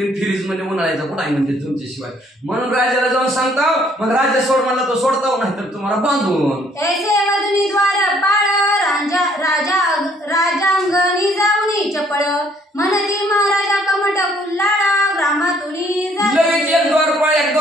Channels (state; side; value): normal; both; correlation 0.64